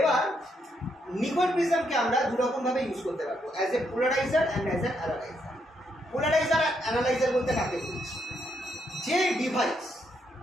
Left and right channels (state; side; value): normal; both; correlation 0.77